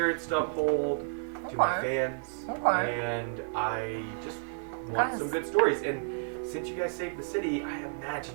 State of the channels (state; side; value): silent; left; 57 dB below the other